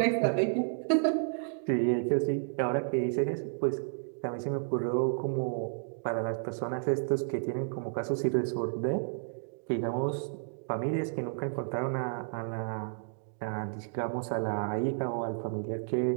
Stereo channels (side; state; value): left; silent; digital silence